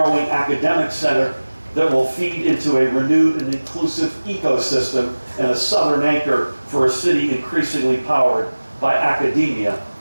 academic center that will feed into a renewed and inclusive ecosystem and a southern anchor for a city increasingly powered by academia,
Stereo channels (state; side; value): inverted; both; correlation -1.00